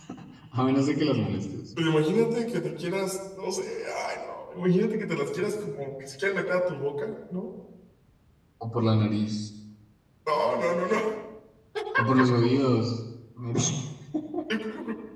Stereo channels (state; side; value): identical; both; correlation 1.00